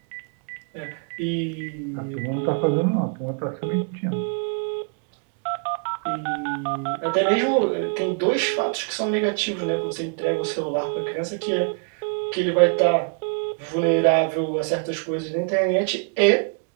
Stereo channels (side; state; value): left; quieter; 39.6 dB